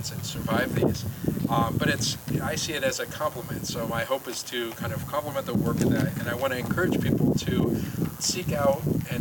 and survived these. But I see it as a compliment. So my hope is to kind of complement the work of that, and I want to encourage people to seek out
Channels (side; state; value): both; identical; correlation 1.00